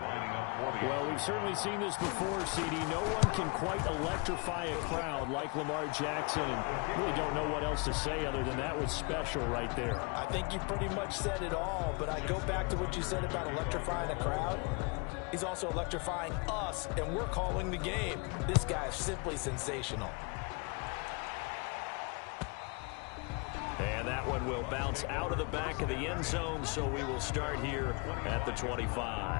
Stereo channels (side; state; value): right; quieter; 31.2 dB